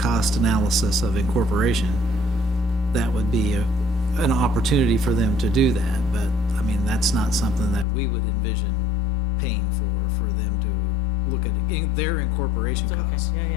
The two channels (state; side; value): drops out; right; at 7.9 s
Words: analysis of incorporation, that would be an opportunity for them to do that. But I mean, that's not something that we would envision paying for them to look at their incorporation That's okay. costs.